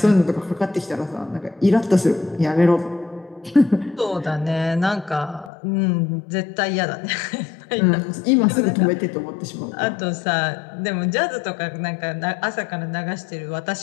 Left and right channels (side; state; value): right; drops out; at 5.5 s